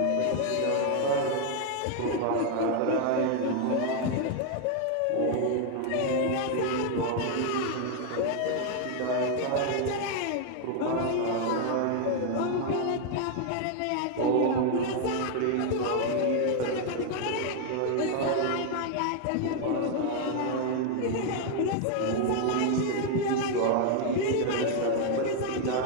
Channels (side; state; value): both; different; correlation 0.00